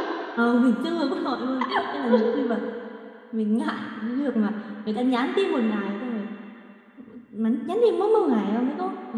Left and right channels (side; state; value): both; identical; correlation 1.00